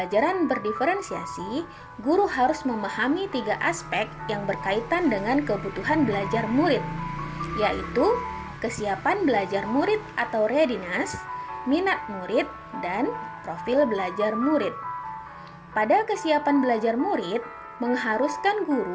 berdiferensiasi, guru harus memahami 3 aspek yang berkaitan dengan kebutuhan belajar murid, yaitu kesiapan belajar murid atau readiness, minat murid, dan profil belajar murid. Pada kesiapan belajar murid, mengharuskan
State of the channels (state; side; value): identical; both; correlation 1.00